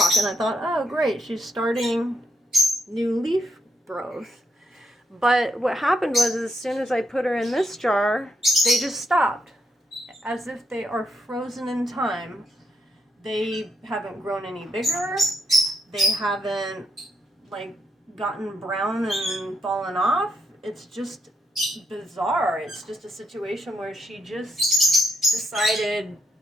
And I thought, oh great, she's starting new leaf growth. But what happened was, as soon as I put her in this jar, they just stopped, as if they are frozen in time. They haven't grown any bigger. They haven't gotten brown and fallen off. It's just bizarre. It's just a situation where she just decided,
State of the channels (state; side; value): normal; both; correlation 0.78